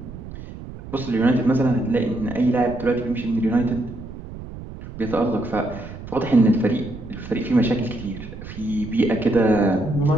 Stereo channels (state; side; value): noise; right; rumble, 12 dB below the sound